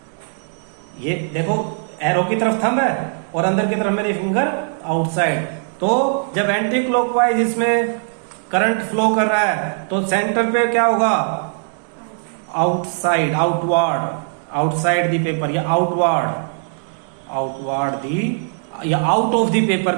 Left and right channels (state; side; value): silent; left; digital silence